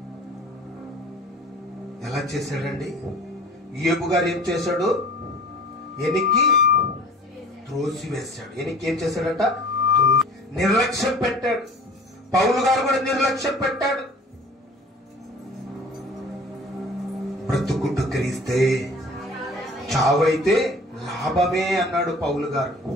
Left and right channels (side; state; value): both; normal; correlation 0.46